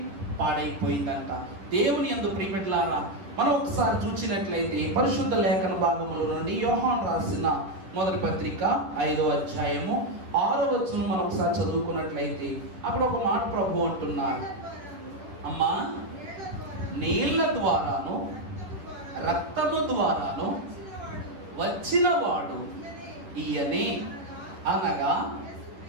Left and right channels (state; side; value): late; left; 10 ms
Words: పాడైపోయిందంట. దేవుని యందు ప్రియబిడ్డలారా, మనం ఒకసారి చూసినట్లయితే పరిశుద్ధ లేఖన భాగముల నుండి యోహాను రాసిన మొదటి పత్రిక 5వ అధ్యాయము 6వ వచనం మనం ఒకసారి చదువుకున్నట్లయితే అక్కడ ఒక మాట ప్రభు అంటున్నారు, అమ్మా నీళ్ల ద్వారాను రక్తము ద్వారాను వచ్చిన వాడు ఈయనే, అనగా